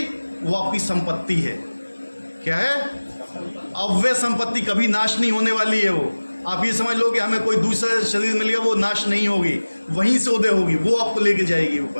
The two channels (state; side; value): inverted; both; correlation -1.00